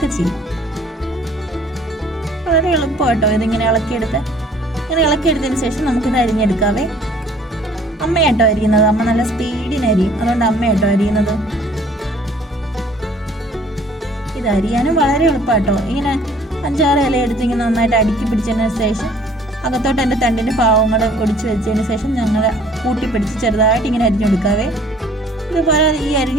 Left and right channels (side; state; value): both; normal; correlation 0.55